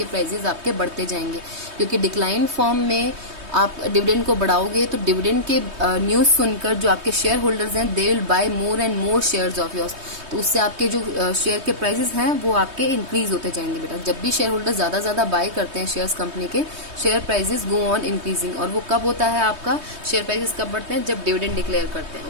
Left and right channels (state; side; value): late; left; 3.2 ms